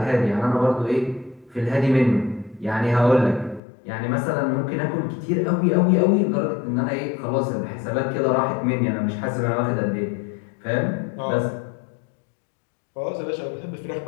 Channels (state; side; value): drops out; right; at 3.6 s